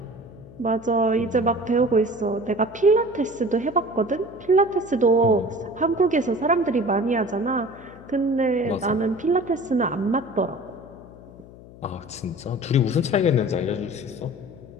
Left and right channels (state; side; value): noise; left; hum, 19 dB below the sound